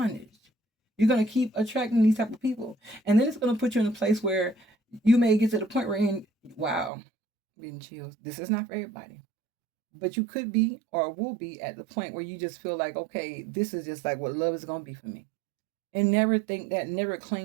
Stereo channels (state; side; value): drops out; left; at 6.9 s